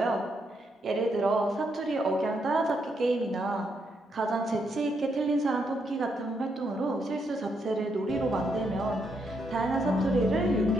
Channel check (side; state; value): both; normal; correlation 0.78